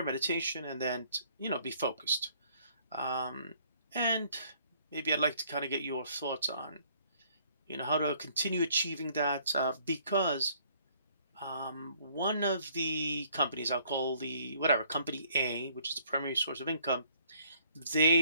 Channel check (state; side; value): inverted; both; correlation -0.63